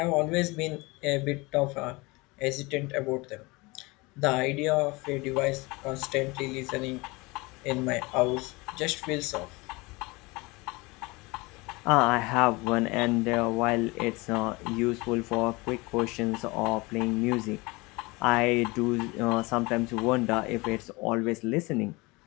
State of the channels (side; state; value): right; quieter; 24.6 dB